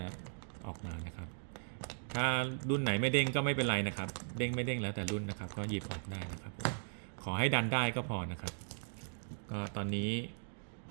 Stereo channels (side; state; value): left; silent; digital silence